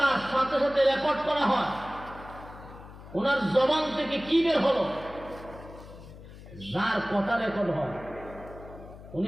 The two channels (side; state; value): left; noise; hum, 16 dB below the sound